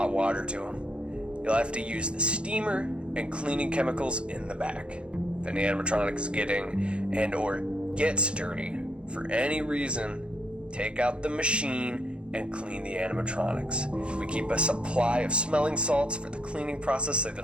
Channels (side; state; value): left; late; 0.057 ms